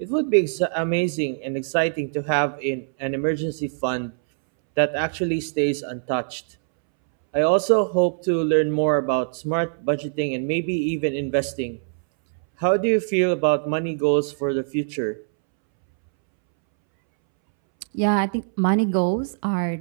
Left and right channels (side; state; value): left; silent; 63 dB below the other